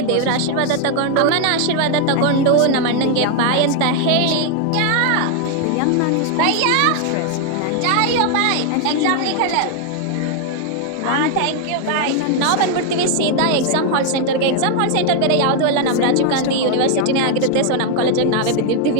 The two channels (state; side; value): different; both; correlation 0.00